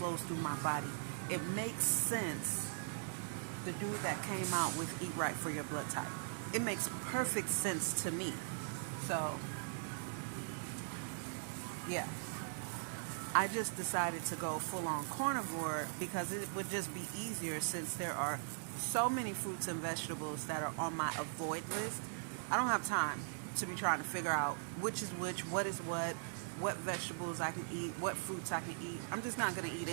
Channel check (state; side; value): silent; left; 51 dB below the other